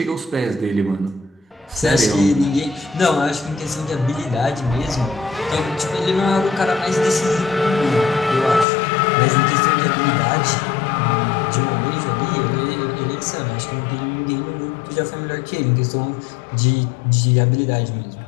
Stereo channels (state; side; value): drops out; right; at 8.7 s